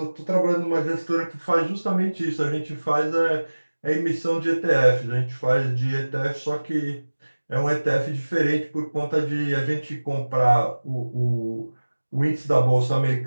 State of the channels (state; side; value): inverted; both; correlation -1.00